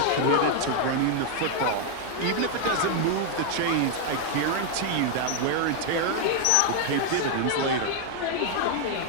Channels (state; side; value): different; both; correlation 0.00